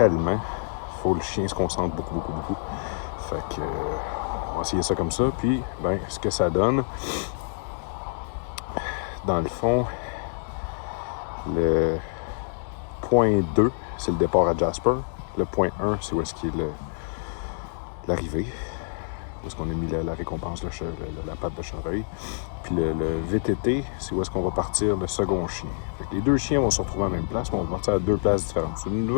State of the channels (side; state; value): right; silent; digital silence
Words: Il faut que le chien se concentre beaucoup. Fait que... on va essayer ça comme ça, puis ben, ce que ça donne, dans le fond, le point 2, c'est le départ à Jasper. Le point 1, c'est où est-ce qu'il est l'arrivée. Où est-ce qu'on a mis la récompense, la patte de chevreuil. Puis le VTT, c'est où est-ce qu'on va partir le second chien. Fait que les deux chiens vont se retrouver à la même place, mais on va partir à deux places différentes. C'est une